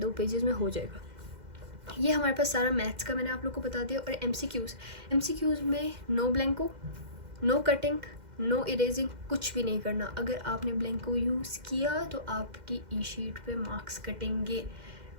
पेजेस में हो जाएगा। ये हमारे पास सारा मैथ्स का मैंने आप लोग को बता दिया। और एमसीक्यूज़ में नो ब्लैंको, नो कटिंग, नो इरेजिंग, कुछ भी नहीं करना। अगर आपने ब्लैंको यूज़ किया तो आपकी ई शीट पे मार्क्स कटेंगे।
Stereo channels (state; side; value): late; left; 2.1 ms